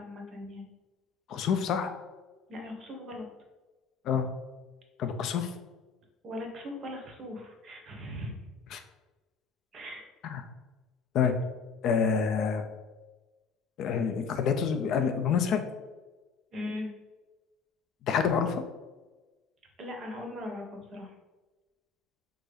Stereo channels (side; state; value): right; quieter; 5.7 dB